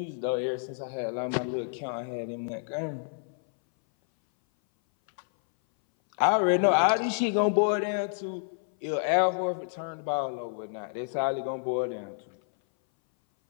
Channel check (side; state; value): right; silent; 58 dB below the other